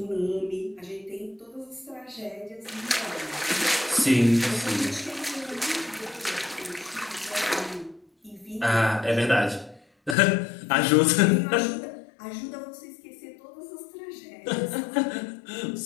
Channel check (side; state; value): right; drops out; at 10.2 s